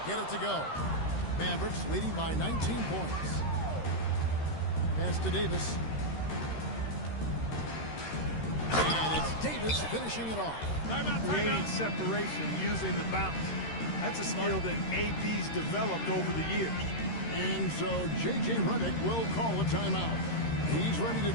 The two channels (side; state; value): right; late; 13 ms